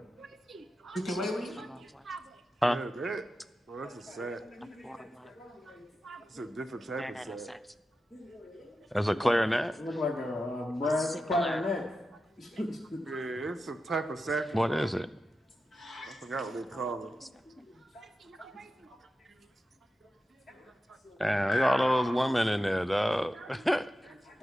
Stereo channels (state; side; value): normal; both; correlation 0.91